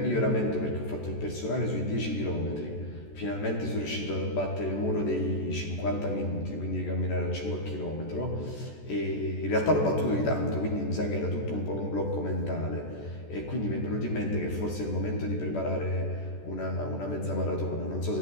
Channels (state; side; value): late; right; 14 ms